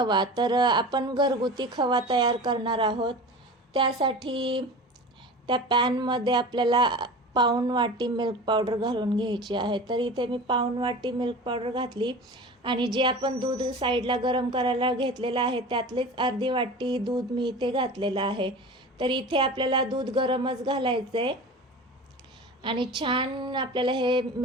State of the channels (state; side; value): normal; both; correlation 0.34